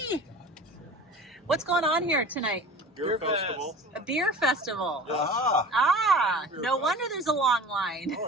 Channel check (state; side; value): normal; both; correlation 0.38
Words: What's going on here tonight? Beer festival. A beer festival. Yes. Ah, Beer no fest. wonder there's a long line.